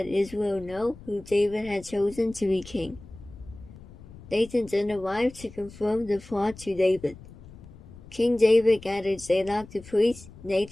Israel know who David had chosen to be king. Nathan then arrived to confirm the plot to David. King David gathered Zadok the priest,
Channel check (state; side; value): noise; left; rumble, 18 dB below the sound